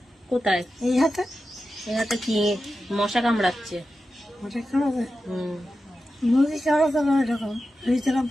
কোথায়? এই হাতে এই হাতে কি মশা কামড়াচ্ছে?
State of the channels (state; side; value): normal; both; correlation 0.92